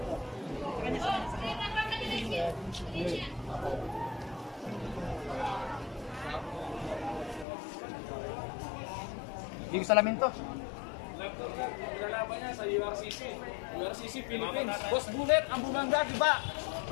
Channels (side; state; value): right; drops out; at 7.5 s